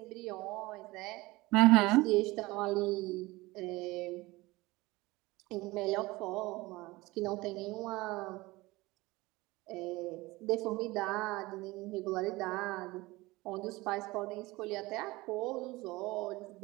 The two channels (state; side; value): quieter; left; 21.1 dB